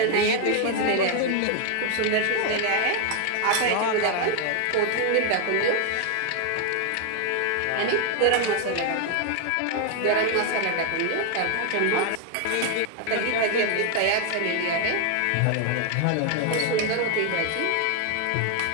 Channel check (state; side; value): different; both; correlation 0.01